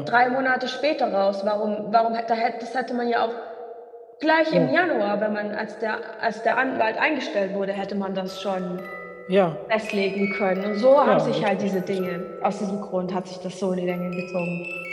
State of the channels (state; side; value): identical; both; correlation 1.00